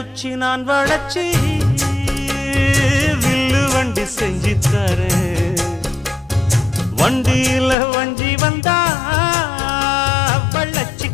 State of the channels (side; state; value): right; drops out; at 7.8 s